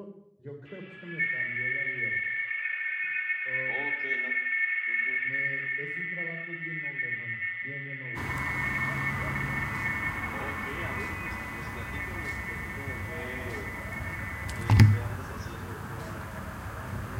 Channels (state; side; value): identical; both; correlation 1.00